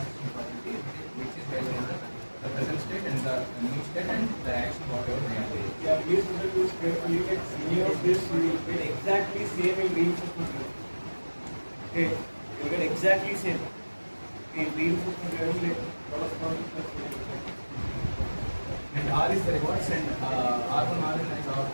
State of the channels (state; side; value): inverted; both; correlation -1.00